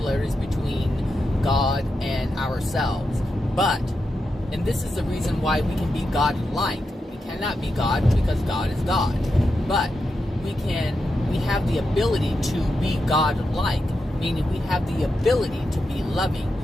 between God and ourselves. But, and this is the reason why we can be God-like. We cannot be God because God is God. But we have the ability to be God-like, meaning we have the ability to be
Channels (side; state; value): both; normal; correlation 0.87